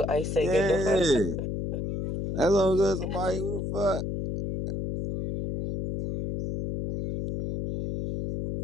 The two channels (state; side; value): noise; left; hum, 3 dB below the sound